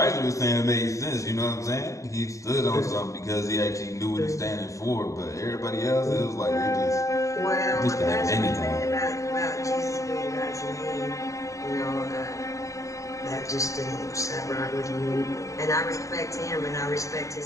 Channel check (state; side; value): late; right; 0.16 ms